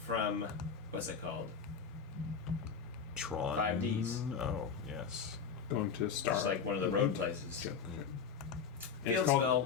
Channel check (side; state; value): right; quieter; 6.4 dB